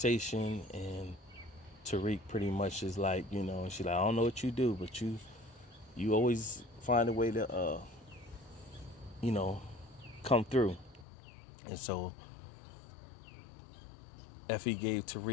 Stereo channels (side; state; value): right; drops out; at 11.1 s